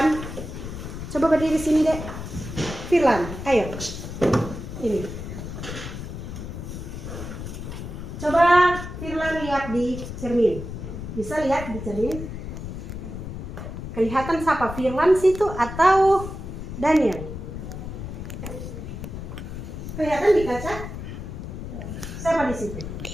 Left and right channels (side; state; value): left; noise; rumble, 8 dB below the sound